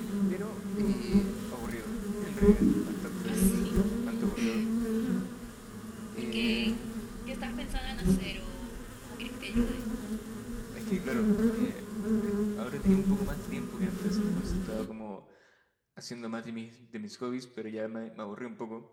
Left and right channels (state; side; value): identical; both; correlation 1.00